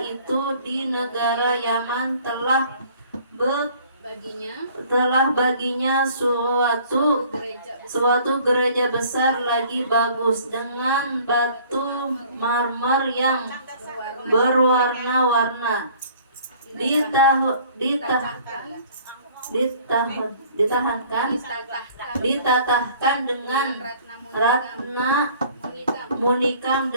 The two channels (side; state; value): both; inverted; correlation -0.53